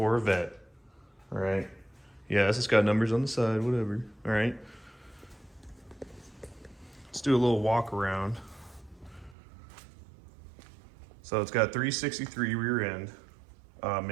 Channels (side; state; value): left; drops out; at 9.3 s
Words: All right. Yes, it's got numbers on the side, whatever. All right. Let's do a little walk around. So it's got 363 rear end,